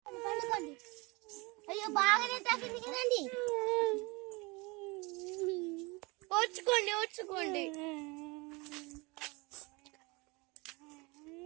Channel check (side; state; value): left; quieter; 26.3 dB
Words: అయ్యో బాగానే తగ్గింది కదండి. ఓర్చుకోండి ఓర్చుకోండి.